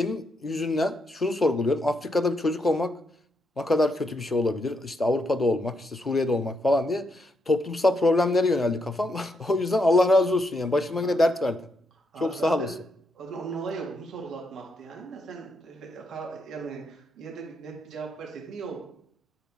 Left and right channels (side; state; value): both; normal; correlation 0.79